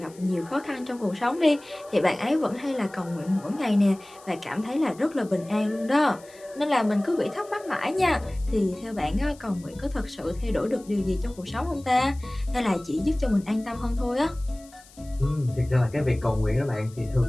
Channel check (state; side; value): noise; left; hiss, 24 dB below the sound